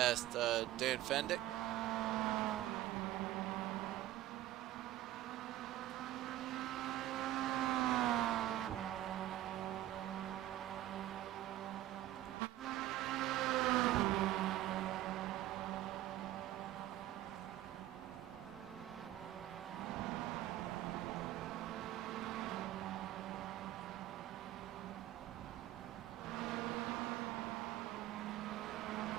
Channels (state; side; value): quieter; left; 14.5 dB